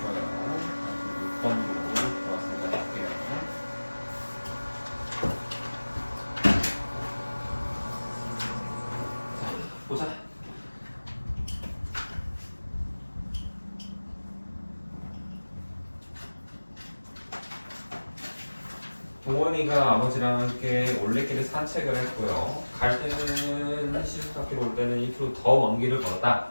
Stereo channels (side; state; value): both; inverted; correlation -1.00